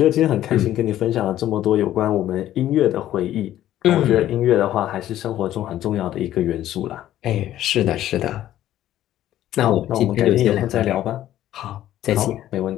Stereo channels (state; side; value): quieter; right; 12.8 dB